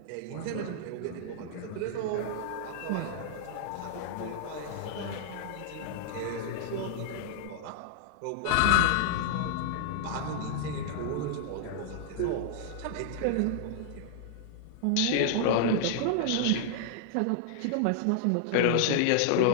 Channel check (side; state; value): both; different; correlation -0.01